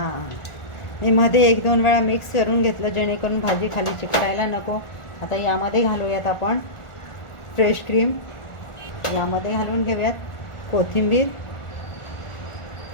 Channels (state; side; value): late; right; 1.4 ms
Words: मी मध्ये 1-2 वेळा मिक्स करून घेतलं जेणेकरून भाजी खाली चिकटायला नको. आता यामध्ये घालूयात आपण फ्रेश क्रीम. यामध्ये घालून घेऊयात कोथिंबीर.